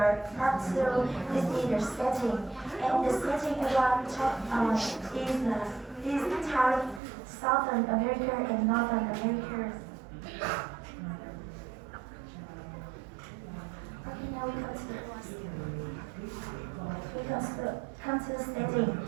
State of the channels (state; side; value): drops out; left; at 7.0 s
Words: part 2. This is the setting. And the setting around is Southern America and Northern America. Okay, now we come to the setting.